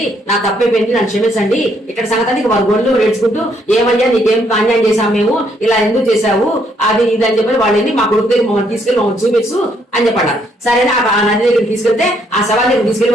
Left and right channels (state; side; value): normal; both; correlation 0.71